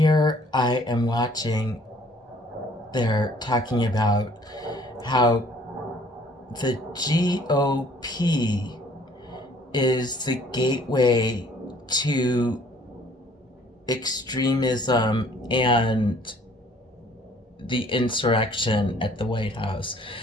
I am watching, they're talking about how the GOP is the gateway to extremism and the insurrection at the White House.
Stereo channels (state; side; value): normal; both; correlation 0.57